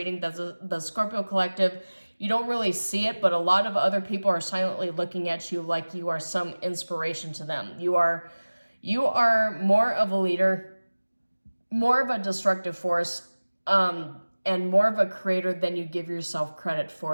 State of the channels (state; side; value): inverted; both; correlation -1.00